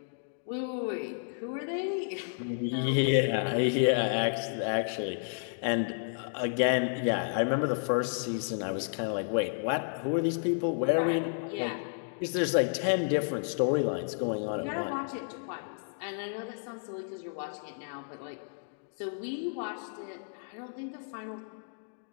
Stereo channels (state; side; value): silent; right; digital silence